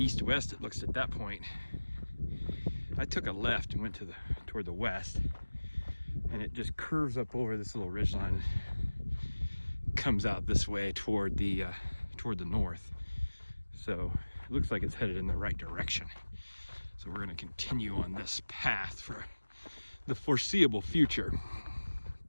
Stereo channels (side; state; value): both; inverted; correlation -1.00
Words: it looks at that point. I took a left and went toward the west, and it just curves up over this little ridgeline and comes out this way toward the north. So it looks like it's headed in the right direction. So we're going to continue on this path for the foreseeable future.